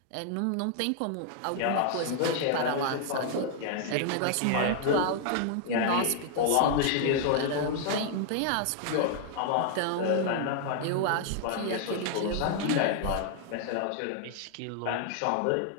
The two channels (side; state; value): both; different; correlation 0.00